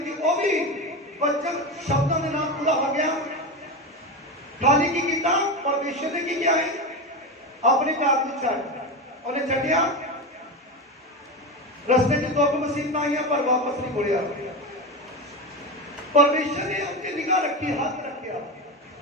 कि वो भी वचन शब्दों के नाल पूरा हो गया। खाली की किया परमेश्वर ने की किया है अपने घर को छड्ड उन्हें छड्डिया। रस्ते च दुख मुसीबतां आईयां पर वापस नहीं मुड़िया। परमेश्वर ने उसकी निगाह रखी, हाथ रखा,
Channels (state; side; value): normal; both; correlation 0.19